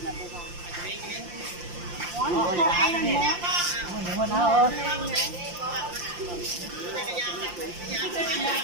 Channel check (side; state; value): left; late; 5.7 ms